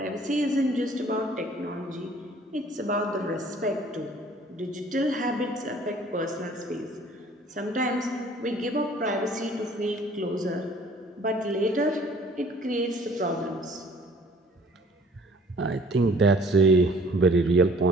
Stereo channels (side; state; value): both; normal; correlation 0.54